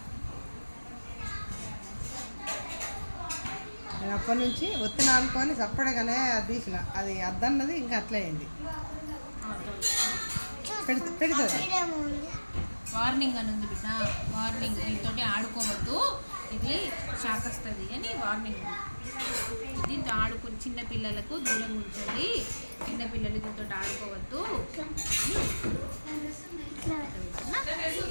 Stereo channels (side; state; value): both; inverted; correlation -1.00